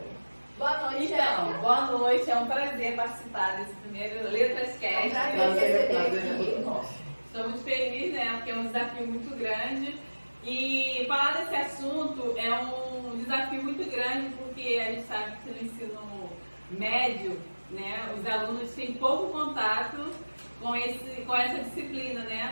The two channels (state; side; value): inverted; both; correlation -1.00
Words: Boa noite, Érica. Boa noite, é um prazer participar desse primeiro Letras Cast. É um prazer receber aqui. Estou muito feliz, né, porque é um desafio muito grande. E falar desse assunto é um desafio muito grande, porque a gente sabe que no ensino médio, né, os alunos têm pouco contato com essa disciplina,